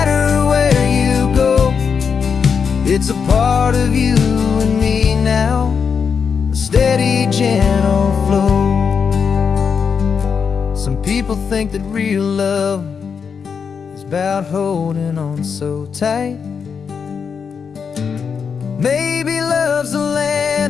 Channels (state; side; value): quieter; right; 6.3 dB